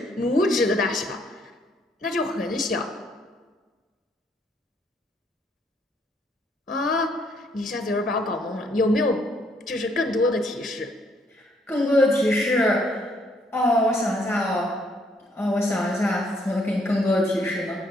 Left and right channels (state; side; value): normal; both; correlation 0.69